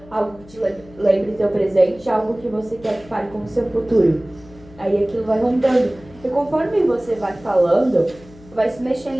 algo que te lembre seu presente, algo que você quer que fale com o seu futuro. Aí aquilo vai rondando. E conforme você vai falando, vai se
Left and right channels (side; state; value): left; noise; hum, 22 dB below the sound